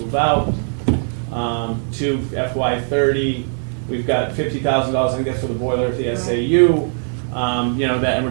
out to FY30. We've got $50,000, I think that's for the boiler at the SAU. And we're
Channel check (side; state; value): left; silent; 59 dB below the other